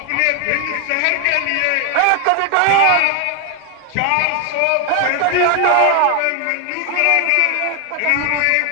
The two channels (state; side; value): different; both; correlation 0.01